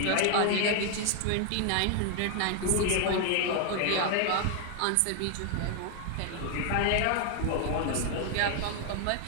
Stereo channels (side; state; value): both; different; correlation 0.00